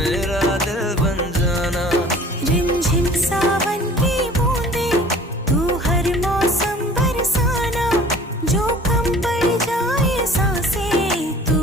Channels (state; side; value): normal; both; correlation 0.48